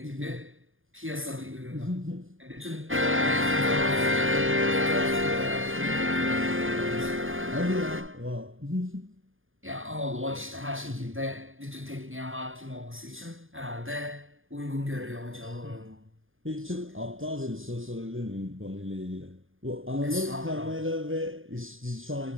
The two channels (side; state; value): left; late; 0.59 ms